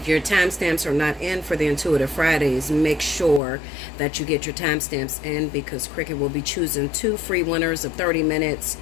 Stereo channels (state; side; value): drops out; right; at 3.4 s